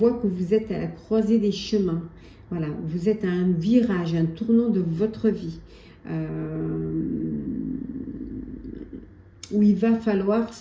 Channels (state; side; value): identical; both; correlation 1.00